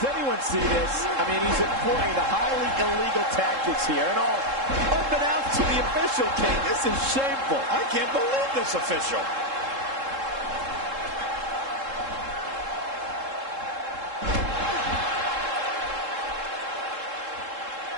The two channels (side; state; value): left; late; 3.7 ms